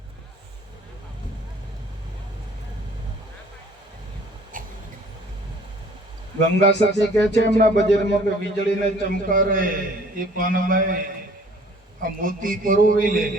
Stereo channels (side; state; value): both; normal; correlation 0.54